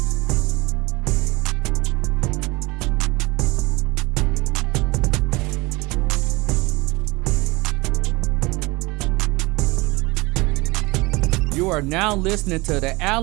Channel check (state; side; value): quieter; left; 23.0 dB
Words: You are now listening to the